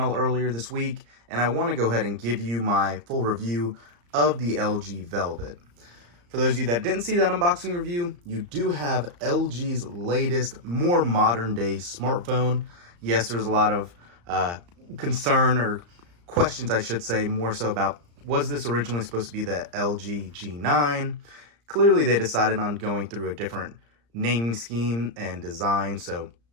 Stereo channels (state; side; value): late; left; 34 ms